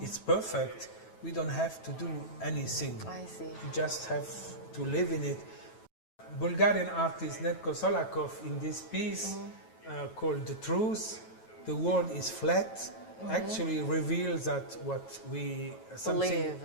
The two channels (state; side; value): late; right; 9.2 ms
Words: perfect, we don't have to do anything. I see. We just have to live in it. Bulgarian artist Netko Solakov, in this piece called The Truth, the world is flat, actually reveals that what we